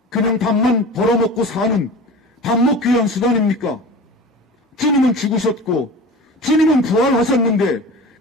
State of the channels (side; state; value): both; normal; correlation 0.35